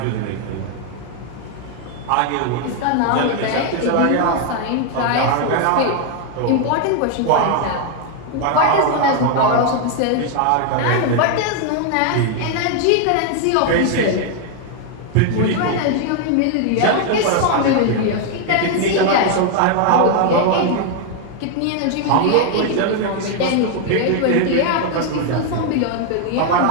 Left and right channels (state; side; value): different; both; correlation 0.00